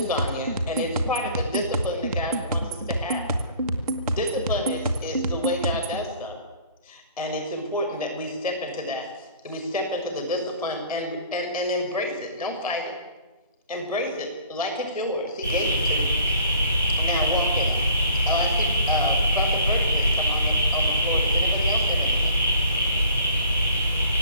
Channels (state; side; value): inverted; both; correlation -0.51